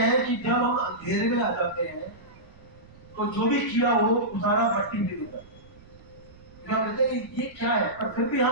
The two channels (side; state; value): right; noise; rumble, 23 dB below the sound